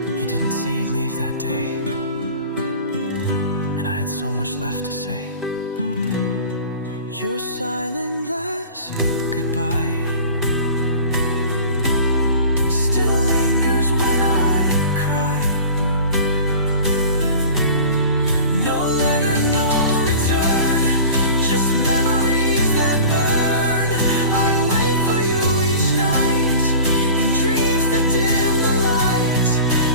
You didn't say you'd leave that day, and I had so much left to say. Your silent last goodbye still lingers when I cry. No letter, no return, just memories that burn. I wait for you each night in dreams that dim the light,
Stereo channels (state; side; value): inverted; both; correlation -0.40